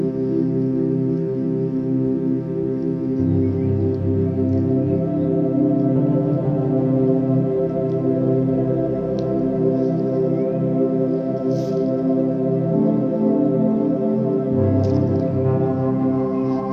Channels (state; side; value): identical; both; correlation 1.00